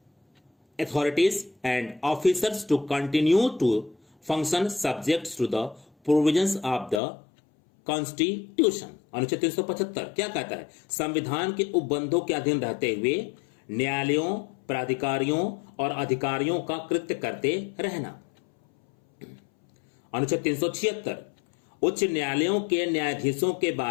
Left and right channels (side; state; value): right; drops out; at 7.0 s